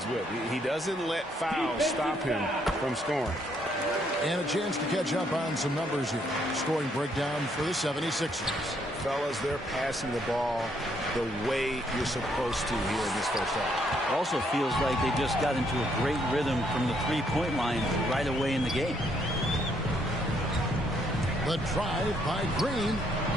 with. He doesn't let fouls stop him from scoring. And a chance to catch up on some numbers here. Scoring breakdown for the 76ers. Fellas, they're passing the ball the way you're supposed to here in this first half. Also feels like they just got into a great rhythm from the three-point line right away in the game. The drive by Green.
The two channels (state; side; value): normal; both; correlation 0.71